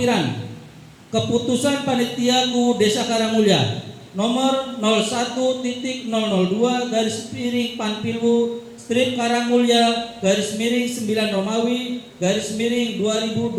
keputusan Panitia KUU Desa Karangmulya nomor 01.002 garis miring Panpilwu strip Karangmulya garis miring 9 Romawi garis miring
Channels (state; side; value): identical; both; correlation 1.00